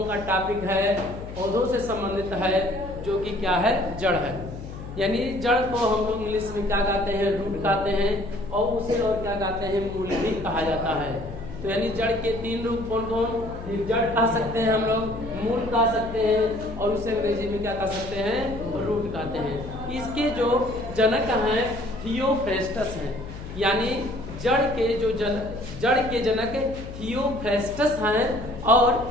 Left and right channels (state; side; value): noise; left; hum, 11 dB below the sound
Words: का टॉपिक है पौधों से संबंधित है, जो कि क्या है, जड़ है। यानी जड़ को हम लोग इंग्लिश में क्या कहते हैं, रूट कहते हैं, और उसे और क्या कहते हैं, मूल भी कहा जाता है। तो यानी जड़ के तीन रूप कौन कौन, जड़ कह सकते हैं हम लोग, मूल कह सकते हैं, और उसे अंग्रेजी में क्या कह सकते हैं, रूट कहते हैं। इसके जो जनक हैं थियोफ्रेस्टस हैं, यानी जड़ के जनक थियोफ्रेस्टस हैं। और